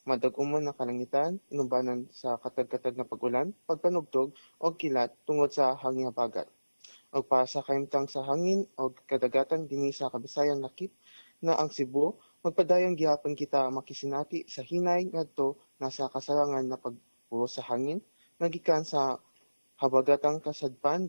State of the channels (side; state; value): both; inverted; correlation -1.00